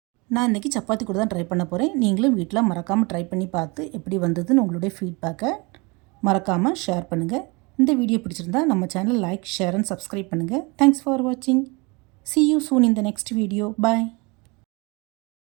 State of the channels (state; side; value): quieter; left; 27.7 dB